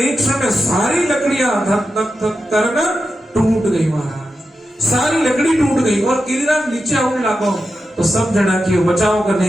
क्षण में सारी लकड़ियां धक धक धक करना टूट गई महाराज, सारी लकड़ी टूट गई। और गिरिराज नीचे आने लगा तो सब जना की बचाओ का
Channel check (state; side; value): normal; both; correlation 0.89